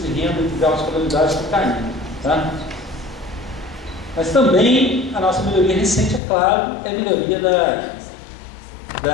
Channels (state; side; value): drops out; right; at 6.2 s